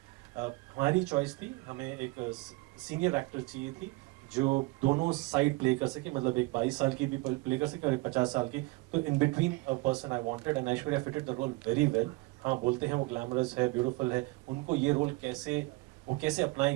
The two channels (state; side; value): quieter; left; 23.8 dB